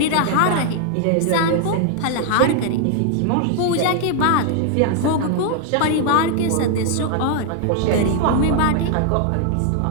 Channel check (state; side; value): different; both; correlation 0.00